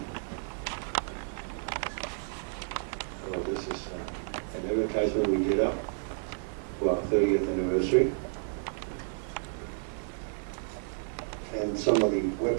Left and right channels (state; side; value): silent; left; 57 dB below the other